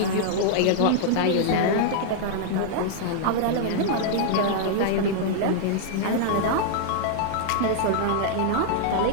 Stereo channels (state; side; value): different; both; correlation -0.01